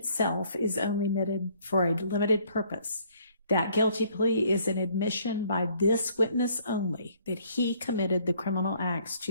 is only admitted for a limited purpose. That guilty plea is an admission by this witness only that he committed the criminal acts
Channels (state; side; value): inverted; both; correlation -0.62